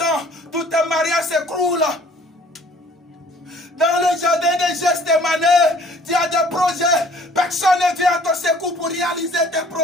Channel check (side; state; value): both; normal; correlation 0.54